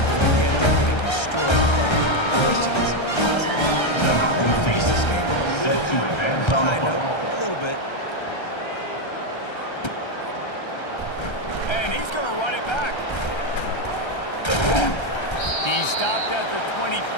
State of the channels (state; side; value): late; right; 1.3 ms